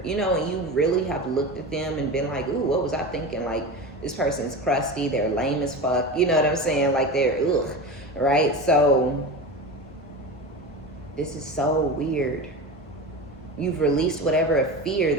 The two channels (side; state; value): both; normal; correlation 0.27